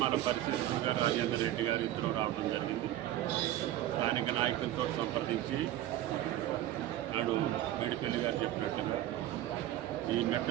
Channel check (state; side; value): quieter; left; 13.6 dB